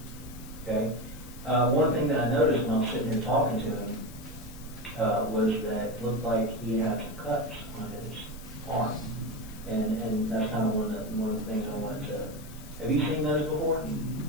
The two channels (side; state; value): left; noise; hiss, 19 dB below the sound